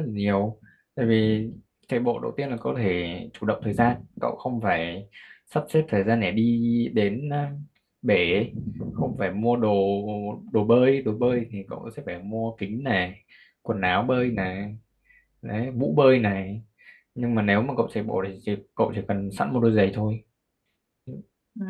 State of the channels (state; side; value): identical; both; correlation 1.00